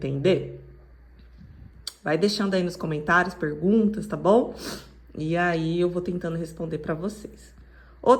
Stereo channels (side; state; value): both; identical; correlation 1.00